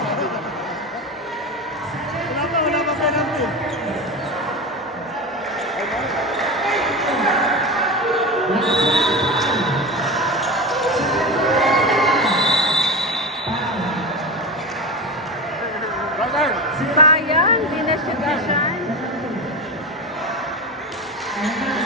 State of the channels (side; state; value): both; normal; correlation 0.23